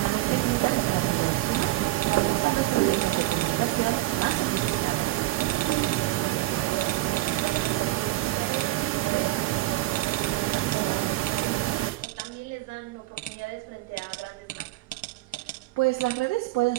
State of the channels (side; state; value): left; quieter; 17.2 dB